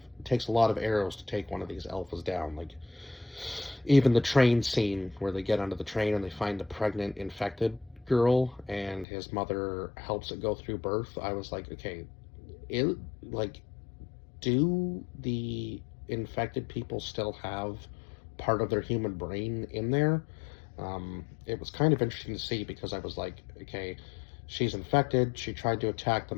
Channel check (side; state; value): right; drops out; at 9.1 s